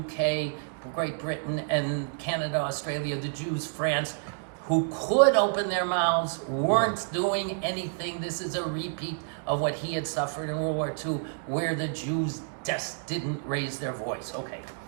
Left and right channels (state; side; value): silent; left; digital silence